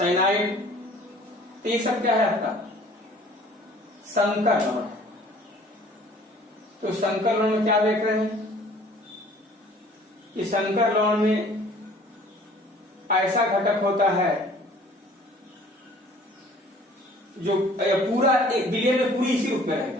तो ये सब क्या है आपका संकर लवण। तो संकर लवण में क्या देख रहे हैं कि संकर लवण में ऐसा घटक होता है जो पूरा एक विलयन में पूरी इसी रूप में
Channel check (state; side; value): normal; both; correlation 0.52